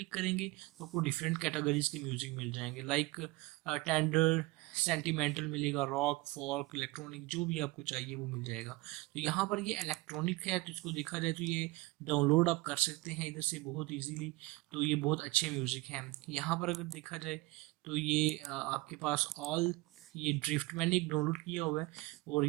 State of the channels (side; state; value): left; quieter; 21.9 dB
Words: करेंगे तो आपको डिफरेंट कैटेगरीज के म्यूज़िक मिल जाएंगे, लाइक टेंडर, सेंटिमेंटल मिलेगा, रॉक, फॉल्क, इलेक्ट्रॉनिक, जो भी आपको चाहिए वो मिल जाएगा। तो यहाँ पर ये इलेक्ट्रॉनिक है तो इसको देखा जाए तो ये डाउनलोड आप कर सकते हैं इधर से बहुत इजीली। तो ये बहुत अच्छे म्यूज़िक हैं। यहाँ पर अगर देखा जाए तो ये आपके पास ऑल, ये ड्रिफ्ट मैंने एक डाउनलोड किया हुआ है और